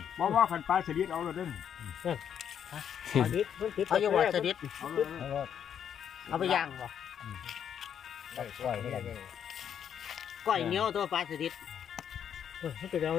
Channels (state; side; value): quieter; right; 8.6 dB